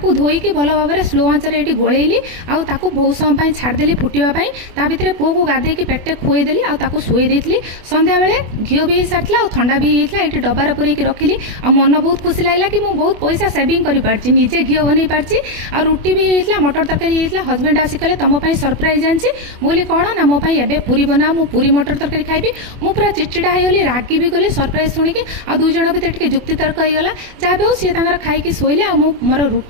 धोईकी भल भाव में स्लो आंचर ये गोलैली आउ ताकू बहुत समय छाड़देली फुटापी ता भितर पुओ को गाधेकी पेटे खुईदेली आउ शुई देती संध्या बेले घी भी सारी ठंडा भी होता ये डबार पूरेक रखिली आ मन बहुत खुशी लगला कि मुझे बहुत पैसा सेविंग कर पार्टी निजे घी बन पार्टी आ रुटी भी होता मटर तरकारी होता हजबैंड आसिक तुम सरप्राइज आनी बोली कौन ना मोप एवं पूरी बना मु पूरी मटर तरकारी खाइबी मु पूरा चिड़चिड़ा होगली रागी भी गली सरप्राइज शुणिकी आ दुई जन भितर टे जुक्ति तर्क होगा जहाँ भी हो सी खाई शोले आ मोर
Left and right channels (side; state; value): left; late; 24 ms